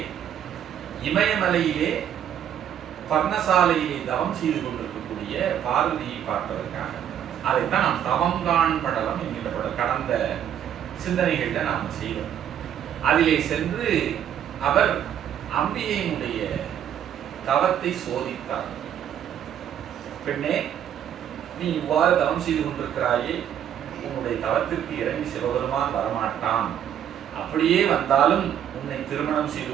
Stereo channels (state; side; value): quieter; left; 9.8 dB